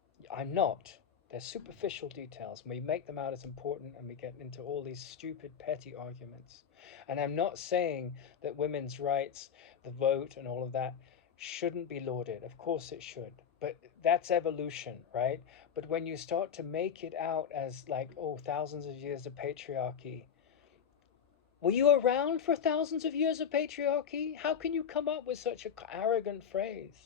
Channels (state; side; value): quieter; right; 7.7 dB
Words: I'm not. They're superficial details, and we make them out as important, and we get into all these stupid, petty arguments. And I'm not saying that women's rights, the vote, and all of that shouldn't be lauded. Of course it should. But that's evolution, right? But when you start to make it out as like, oh, thousands of years of patriarchy. Were you around for thousands of years of patriarchy? How can you come up with such an arrogant